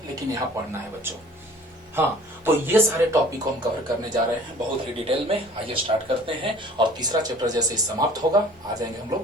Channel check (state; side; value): normal; both; correlation 0.49